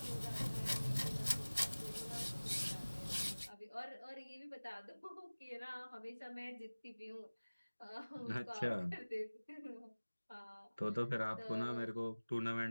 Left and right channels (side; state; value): both; inverted; correlation -1.00